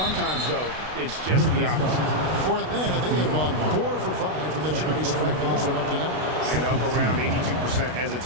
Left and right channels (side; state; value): left; late; 32 ms